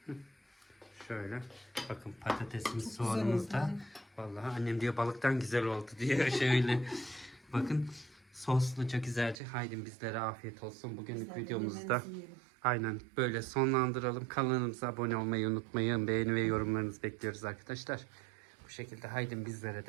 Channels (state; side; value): drops out; left; at 9.4 s